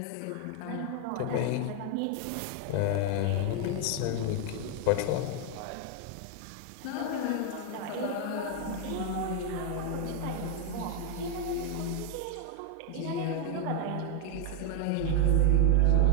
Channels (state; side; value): different; both; correlation 0.00